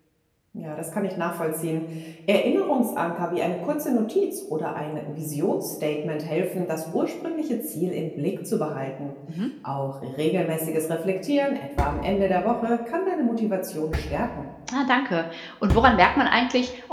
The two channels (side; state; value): both; identical; correlation 1.00